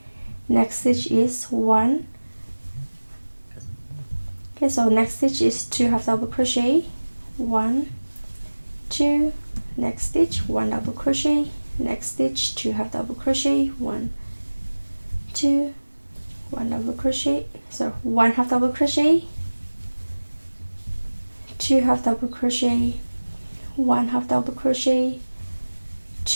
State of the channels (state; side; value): inverted; both; correlation -1.00